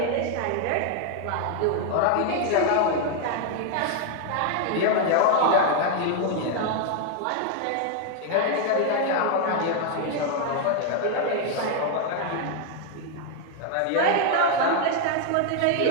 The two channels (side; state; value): both; different; correlation 0.00